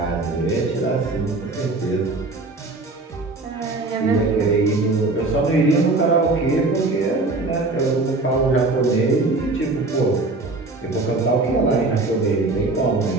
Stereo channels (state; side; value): quieter; left; 3.3 dB